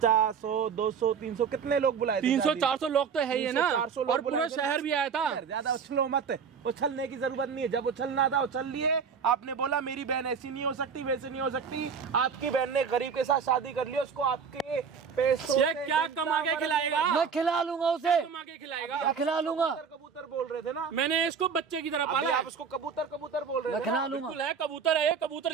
100, 200, 300 कितने लोग बुलाए थे? 300-400 लोग तो है ही है ना। 300-400 लोग और पूरा बुलाए थे। शहर भी आया था। ज्यादा उछलो मत, उछलने की जरूरत नहीं है। जब उछलना था उछल लिए। आपने बोला मेरी बहन ऐसी नहीं हो सकती, वैसे नहीं हो सकती। आपकी बहन ने गरीब के साथ शादी कर ली, उसको आपके पैसों ये क्या कमा के खिलाएगा? मैं खिला लूंगा उसे, कमा के खिलाएगा। मैं खिला लूंगा। कबूतर बोल रहे थे ना, मैंने इसको बच्चे की तरह अभी पाला है। आप उसको कबूतर कबूतर बोल रहे मैं थे ना? खिला लूंगा। बिल्कुल है, कबूतर है ये।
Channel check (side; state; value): left; quieter; 6.3 dB